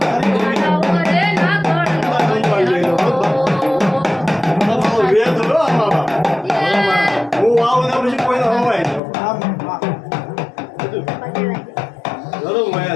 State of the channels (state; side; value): drops out; right; at 9.0 s